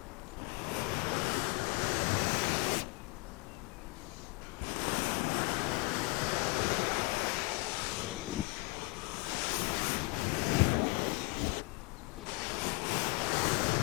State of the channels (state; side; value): quieter; right; 25.3 dB